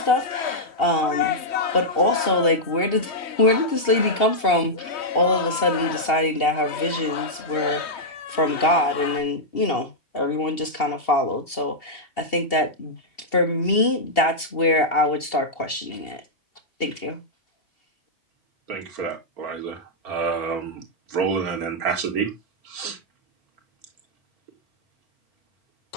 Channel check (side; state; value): right; late; 2.7 ms